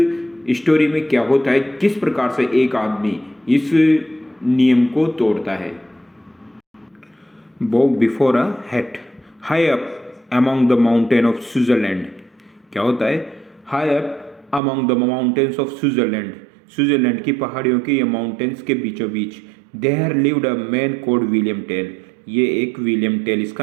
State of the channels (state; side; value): drops out; left; at 14.6 s